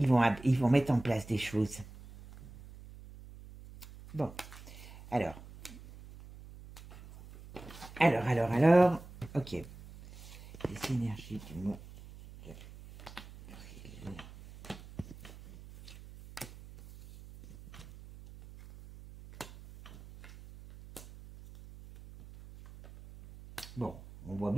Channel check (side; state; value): right; noise; hum, 17 dB below the sound